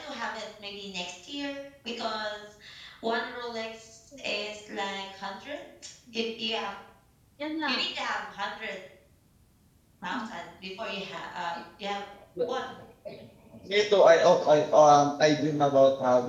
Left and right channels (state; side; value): identical; both; correlation 1.00